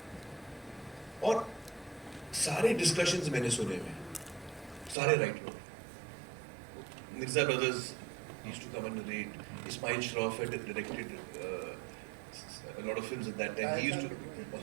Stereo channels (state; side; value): drops out; left; at 5.0 s